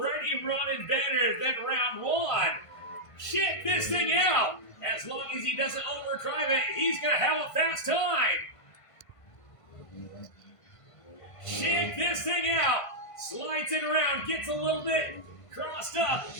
running better than round one. Check this thing out. As long as he doesn't overdrive it, he's going to have a fast time. Check this thing out. Slides it around, gets a little bit crossed up,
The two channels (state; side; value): late; right; 1.5 ms